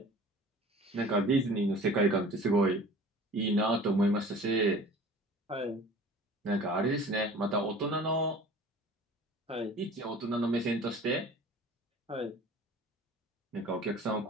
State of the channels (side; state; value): both; normal; correlation 0.44